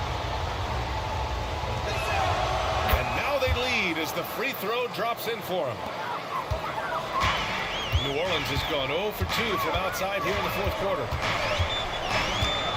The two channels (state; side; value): identical; both; correlation 1.00